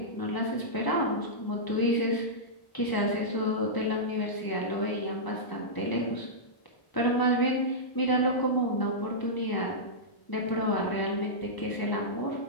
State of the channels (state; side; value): late; right; 1.0 ms